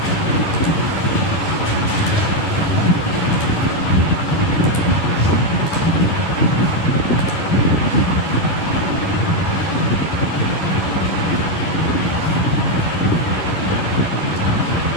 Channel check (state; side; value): late; right; 11 ms